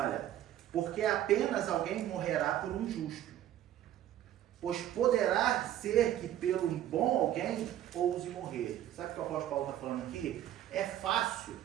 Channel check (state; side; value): quieter; left; 12.0 dB